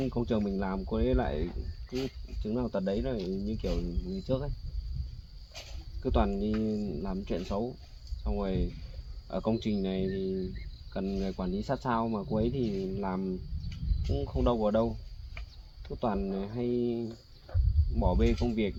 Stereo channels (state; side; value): identical; both; correlation 1.00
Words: công trường mình làm cô ấy lại cứ chứng nào tật đấy, là như kiểu người trước ấy, cứ toàn đi làm chuyện xấu. Xong rồi ở công trình này thì cần người quản lý sát sao, mà cô ấy thì làm cũng không đâu vào đâu, cứ toàn hay bỏ bê công việc,